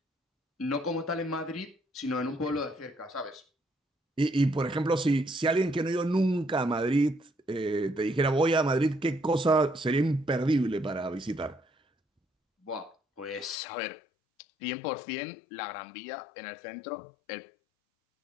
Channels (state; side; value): drops out; right; at 13.6 s